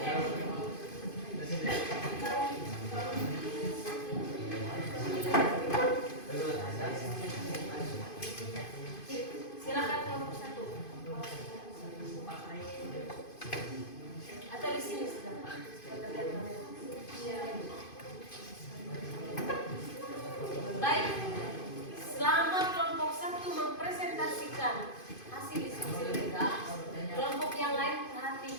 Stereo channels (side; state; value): right; late; 2.5 ms